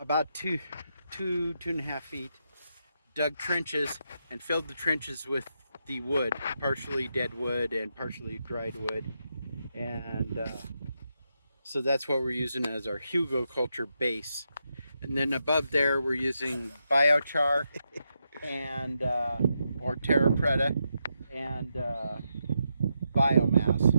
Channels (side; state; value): both; inverted; correlation -0.83